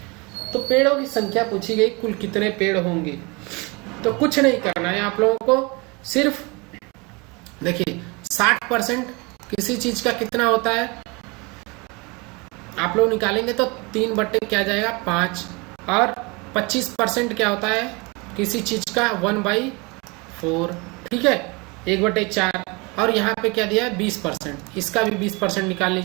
तो पेड़ों की संख्या पूछी गई, कुल कितने पेड़ होंगे। तो कुछ नहीं करना है आप लोगों को, सिर्फ देखिए 60% किसी चीज का कितना होता है, आप लोग निकालेंगे तो 3 बट्टे क्या जाएगा 5, और 25% क्या होता है किसी चीज का 1/4। ठीक है, 1/4, और यहाँ पे क्या दिया है 20%, इसका भी 20% निकाल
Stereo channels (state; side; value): quieter; left; 27.6 dB